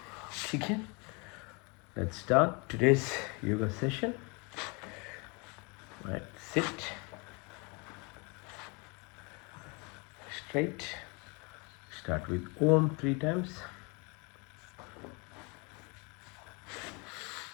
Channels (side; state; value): right; quieter; 30.5 dB